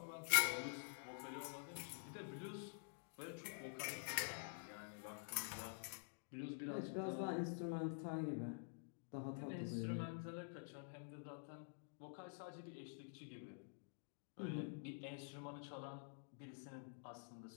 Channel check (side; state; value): right; silent; digital silence